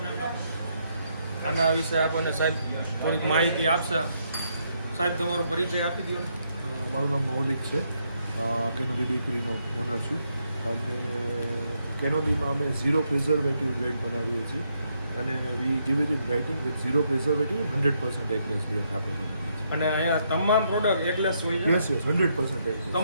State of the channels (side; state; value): both; inverted; correlation -0.76